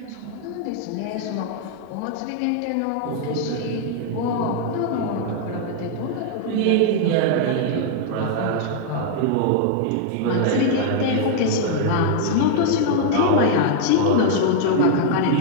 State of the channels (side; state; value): both; different; correlation 0.00